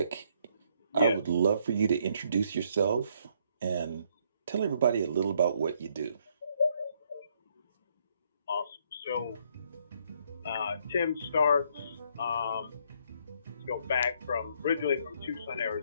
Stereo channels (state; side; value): inverted; both; correlation -0.69